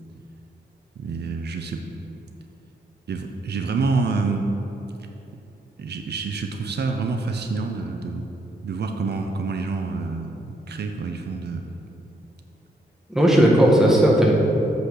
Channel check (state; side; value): normal; both; correlation 0.74